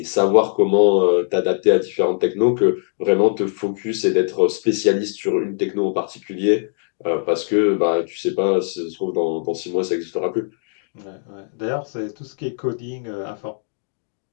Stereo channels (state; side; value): silent; right; digital silence